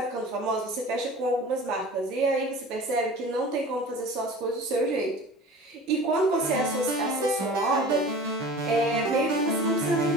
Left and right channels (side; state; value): both; normal; correlation 0.40